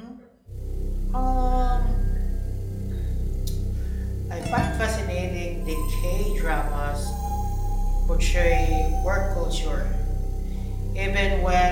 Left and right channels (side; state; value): both; identical; correlation 1.00